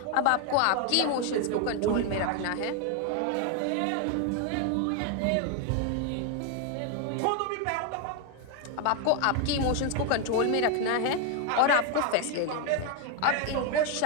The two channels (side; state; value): both; different; correlation 0.01